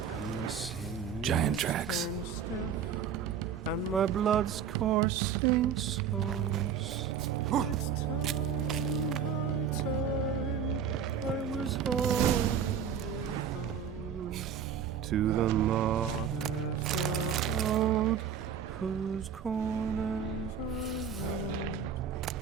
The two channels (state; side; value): quieter; left; 7.5 dB